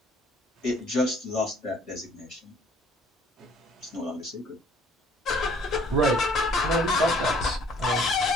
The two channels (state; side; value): normal; both; correlation 0.57